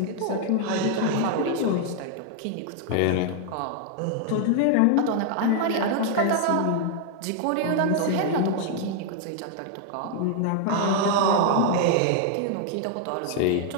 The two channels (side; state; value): both; different; correlation 0.00